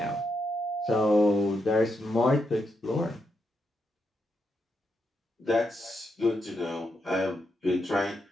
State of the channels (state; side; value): normal; both; correlation 0.82